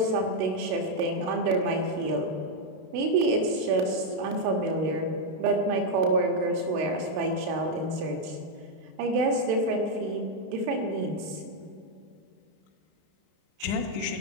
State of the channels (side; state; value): left; late; 32 ms